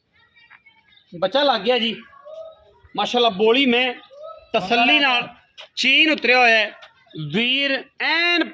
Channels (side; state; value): both; identical; correlation 1.00